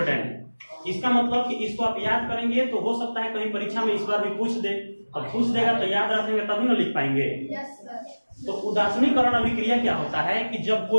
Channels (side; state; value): both; inverted; correlation -1.00